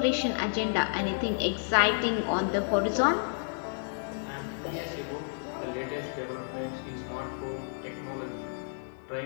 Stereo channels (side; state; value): right; silent; digital silence